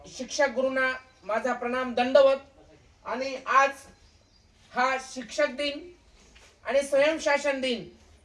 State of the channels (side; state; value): both; identical; correlation 1.00